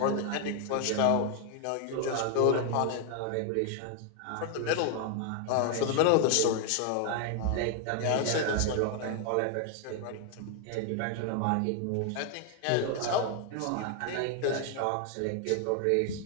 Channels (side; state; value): both; different; correlation 0.00